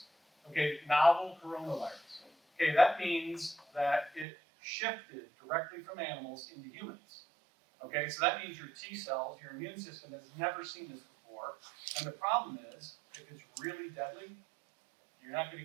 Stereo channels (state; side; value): drops out; left; at 4.2 s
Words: Okay, novel coronavirus. Okay, that means that it shifted directly from animals into humans. Okay, so that means your T cells, your immune system has never seen this before. And the problem is, if it's really deadly, you're not going